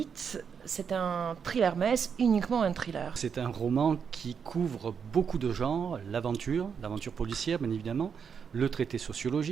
C'est un thriller, mais est-ce uniquement un thriller? C'est un roman qui couvre beaucoup de genres, l'aventure policière bien évidemment, le traité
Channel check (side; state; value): left; quieter; 6.7 dB